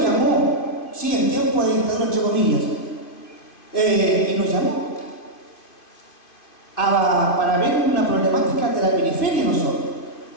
llamó, sí, en tiempo de dictadura, entre comillas, y nos llamó para ver una problemática de la periferia de nosotros.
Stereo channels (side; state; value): right; late; 2.5 ms